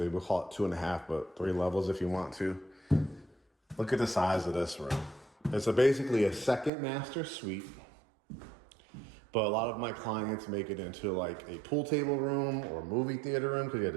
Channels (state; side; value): drops out; left; at 6.7 s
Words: we'll call it 2.5, but 3 levels if you want to. Look at the size of this room. It's basically a second master suite, but a lot of my clients make it into like a pool table room or movie theater room because you have